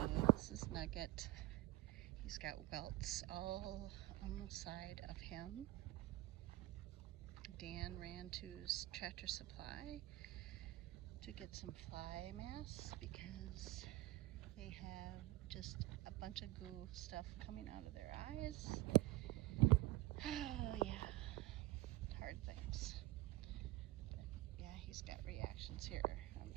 this is Nugget. He's got welts all on the side of him. Dan ran to his Tractor Supply to get some fly masks because they have just a bunch of goo stuff coming out of their eyes. Oh yeah, hard things. But yeah, he's got reactions here on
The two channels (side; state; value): left; quieter; 17.6 dB